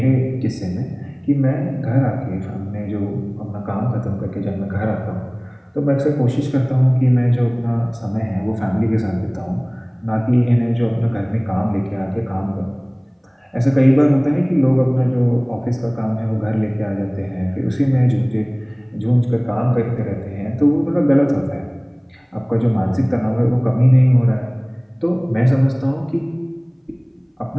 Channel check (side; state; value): both; identical; correlation 1.00